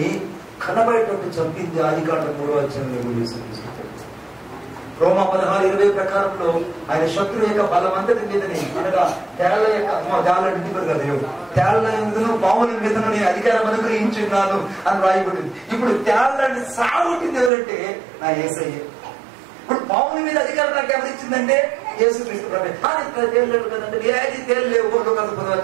కనబడేటట్టు చంపింది ఆదికాండం 3వ అధ్యాయంలో యేసుక్రీస్తు. రోమా 16:20 ప్రకారంలో ఆయన శత్రువు యొక్క బలమంతటి మీదని, అనగా తేళ్ల యొక్క తేళ్ల మీదను పాముల మీదను నేను అధికారం అనుగ్రహించున్నాను అని రాయబడింది. ఇప్పుడు తేళ్లని సాగుతుంది ఎవరంటే నా యేసయ్య. ఇప్పుడు పాముల మీద అధికారం నాకు ఎవరిచ్చిందంటే యేసుక్రీస్తు ప్రభు. తేలేవు కదంటే ఏది తేలేవు. లోకాసు 10వ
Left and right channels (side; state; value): left; drops out; at 17.5 s